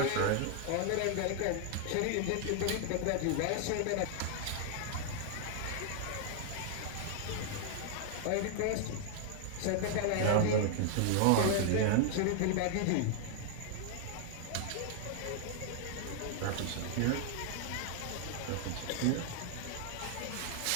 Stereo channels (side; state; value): both; different; correlation 0.00